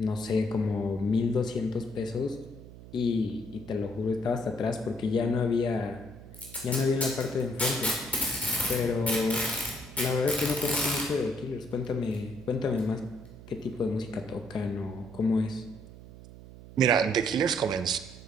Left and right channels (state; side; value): noise; right; hum, 16 dB below the sound